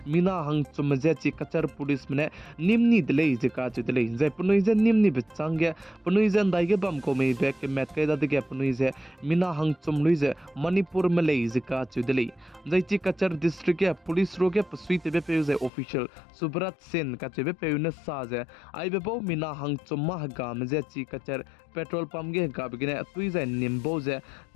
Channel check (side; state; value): right; drops out; at 15.7 s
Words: मीना हंग चुम जे ची कचर पुलिस में निमनी दले जे काचु दले जे पनुई जे निमनी बचांगे पनुई जे दाइगे बम को में बैक के मैट कैदा दगे पनुई जे मीना हंग चुम लुई जे मणिपुर में ले जे काचु दले जे ची कचर डिस्ट्रिक्ट के पुलिस रोगे पसुई ते पे जे ऑफिशियल सुब्रत सेन कचेबे पेउने साजे आइबे बो मिना हंग चुम्मा गाम जे ची कचर पेट्रोल पंप गे गाबगिने तुइ जे निम्बो जे